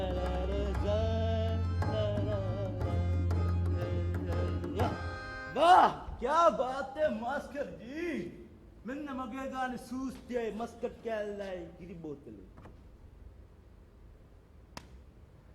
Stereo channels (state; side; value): identical; both; correlation 1.00